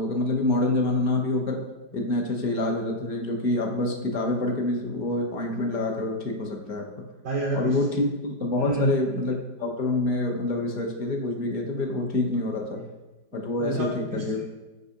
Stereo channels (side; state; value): left; late; 5.0 ms